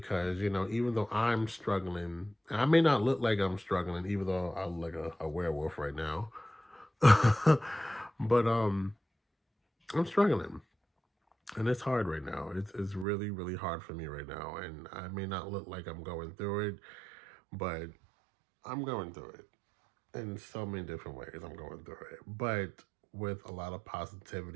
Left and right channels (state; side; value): drops out; left; at 13.1 s